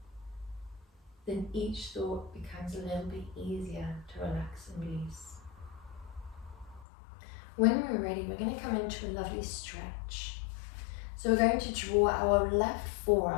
then each thought becomes a little bit easier to relax and release. When we're ready, we're going to come into a lovely stretch. So we're going to draw our left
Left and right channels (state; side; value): drops out; right; at 6.9 s